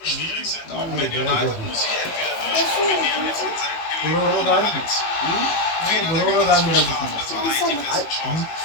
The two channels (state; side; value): late; right; 18 ms